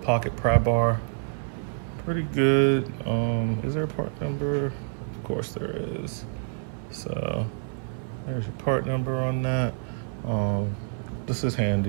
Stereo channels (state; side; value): silent; left; 60 dB below the other